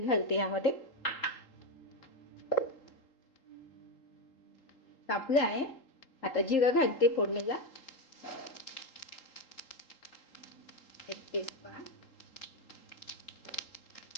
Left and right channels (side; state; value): right; late; 3.8 ms